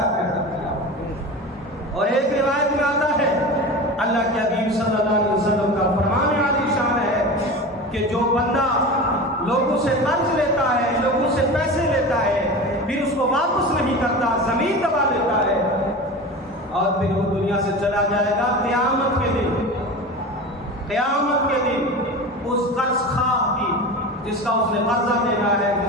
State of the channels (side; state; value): both; normal; correlation 0.30